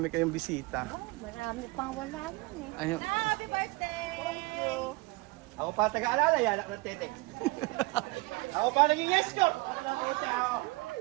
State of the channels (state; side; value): quieter; left; 24.4 dB